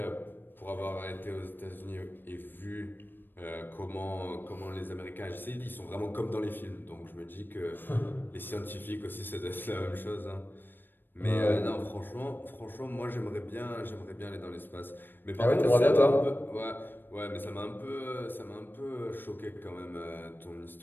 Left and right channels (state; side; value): late; right; 0.094 ms